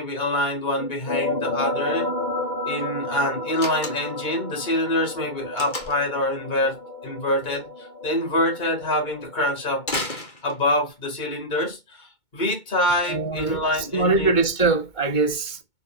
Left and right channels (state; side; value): late; right; 2.2 ms